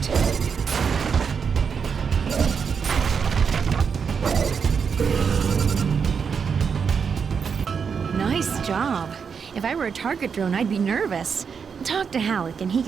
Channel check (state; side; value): quieter; left; 6.3 dB